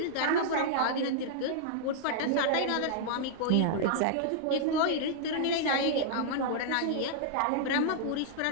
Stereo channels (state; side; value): different; both; correlation -0.01